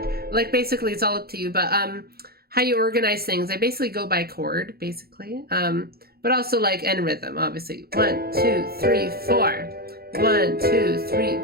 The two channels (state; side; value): late; left; 0.45 ms